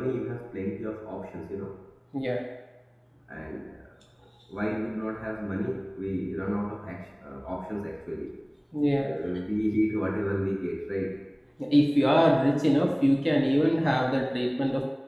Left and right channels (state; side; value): identical; both; correlation 1.00